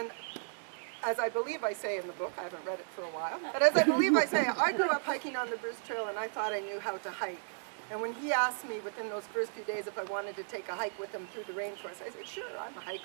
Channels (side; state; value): left; silent; digital silence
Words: as I believe I say in the book, I haven't read it for a while, but as I believe I say, I grew up hiking on the Bruce Trail and I thought I knew how to hike. And when he asked me within those first few days if I wanted to take a hike with him through the rainforest, I said, sure, I'm a